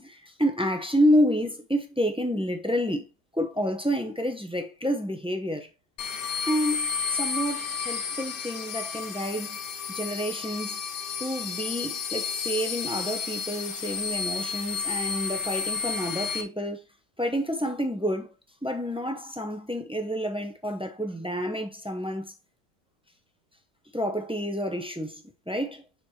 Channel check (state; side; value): normal; both; correlation 0.60